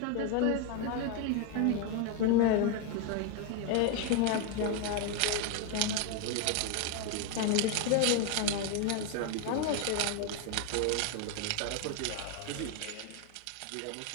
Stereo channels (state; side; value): different; both; correlation 0.01